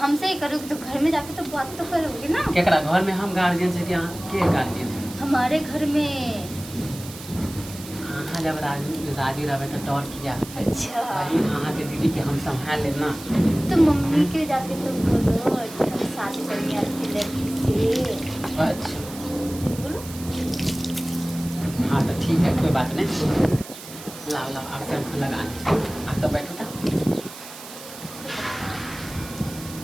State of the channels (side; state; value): right; noise; hiss, 14 dB below the sound